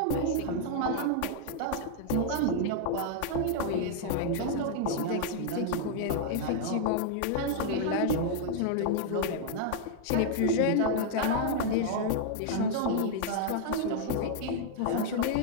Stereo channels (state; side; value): different; both; correlation 0.00